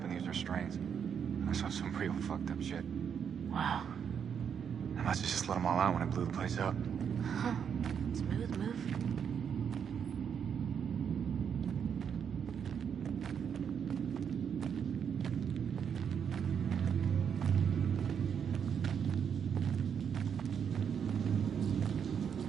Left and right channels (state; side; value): quieter; left; 7.6 dB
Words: in these restraints. I saw some real fucked up shit. Wow. I must have just let them all out when I blew the place up. Huh. Smooth move.